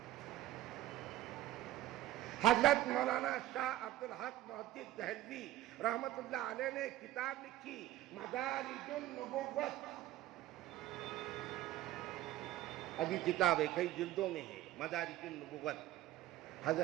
حضرت مولانا شاہ عبدالحق محدث دہلوی رحمت اللہ علیہ نے کتاب لکھی مدارج النبوت. ابھی کتاب ہے، کئی جلدوں میں ہے، مدارج النبوت.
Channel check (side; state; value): left; quieter; 14.4 dB